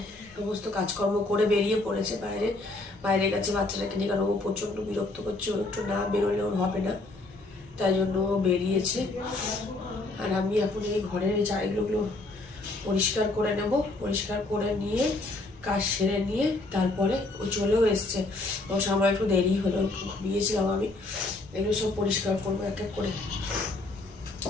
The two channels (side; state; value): right; quieter; 3.0 dB